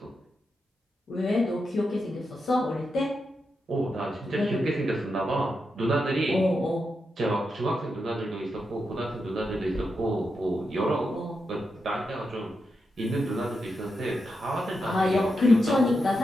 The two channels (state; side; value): normal; both; correlation 0.86